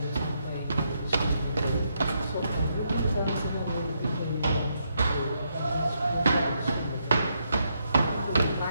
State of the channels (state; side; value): inverted; both; correlation -0.78